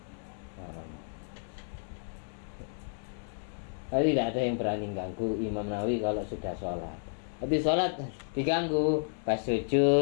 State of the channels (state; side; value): silent; right; digital silence